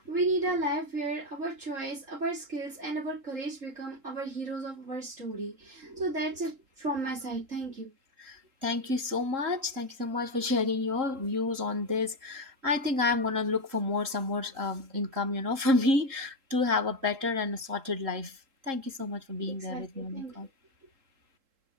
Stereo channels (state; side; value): late; left; 3.7 ms